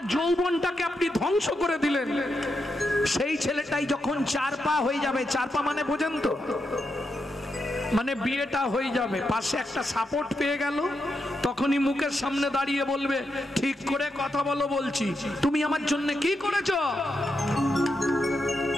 যৌবনটাকে আপনি ধ্বংস করে দিলেন, সেই ছেলেটাই যখন 4 পা হয়ে যাবে, 4 পা মানে বোঝেন তো, মানে বিয়েটা হয়ে যাবে, পাশে একটা সাপোর্ট পেয়ে গেল, তখনই মুখের সামনে দাঁড়িয়ে বলবে, ঠিক করে কথা বলো বলছি, তুমি আমার জন্য কি করেছো?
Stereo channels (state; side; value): normal; both; correlation 0.84